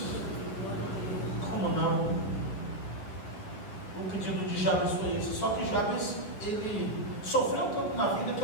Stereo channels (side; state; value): right; late; 10 ms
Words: Como não? O pedido de Jabes foi esse. Só que Jabes, ele sofreu tanto na vida que